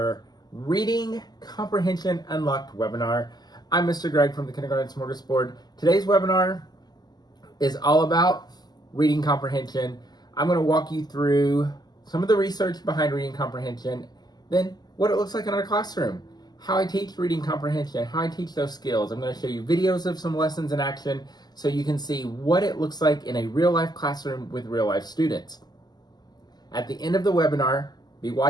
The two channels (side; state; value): right; late; 0.20 ms